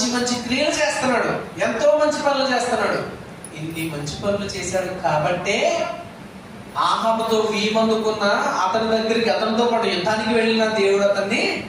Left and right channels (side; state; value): both; identical; correlation 1.00